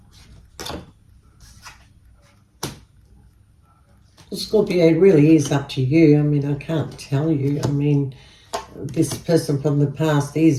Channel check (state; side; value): identical; both; correlation 1.00